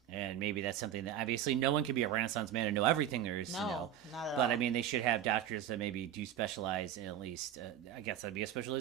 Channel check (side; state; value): left; quieter; 10.4 dB